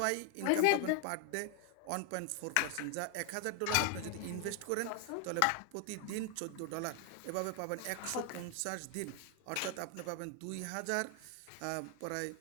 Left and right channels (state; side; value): different; both; correlation 0.00